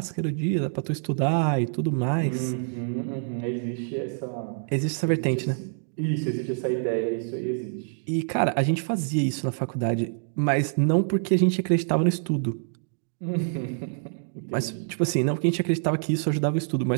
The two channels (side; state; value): left; silent; digital silence